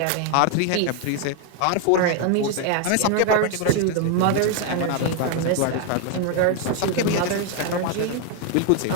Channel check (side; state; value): both; different; correlation 0.00